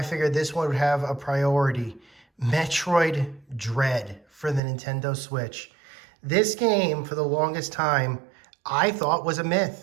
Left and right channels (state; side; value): drops out; left; at 4.6 s